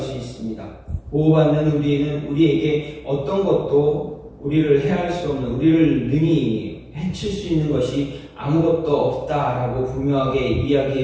있습니다. 보호받는 우리에게 어떤 것도 우리를 해할 수 없는, 우리를 능히 해칠 수 있는 것이 아무것도 없다라고 분명하게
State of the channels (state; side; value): identical; both; correlation 1.00